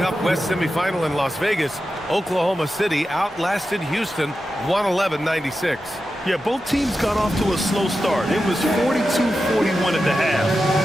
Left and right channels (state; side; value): normal; both; correlation 0.91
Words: West semifinal in Las Vegas, Oklahoma City outlasted Houston 111-96. Yeah, both teams got off to a slow start. It was 42-41 at the half.